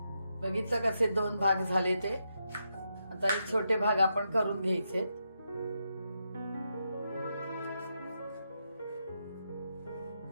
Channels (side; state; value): both; inverted; correlation -0.83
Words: बघितलं कसे दोन भाग झाले ते। आता हे छोटे भाग आपण करून घ्यायचे।